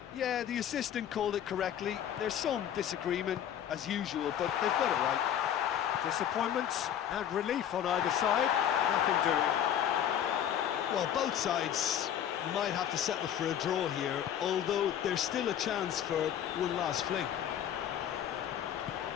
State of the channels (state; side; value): quieter; right; 9.9 dB